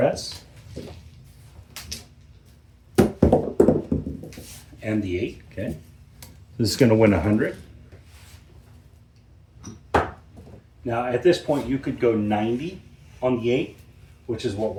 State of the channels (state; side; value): identical; both; correlation 1.00